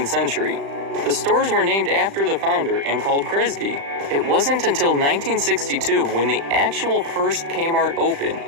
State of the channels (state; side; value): late; left; 35 ms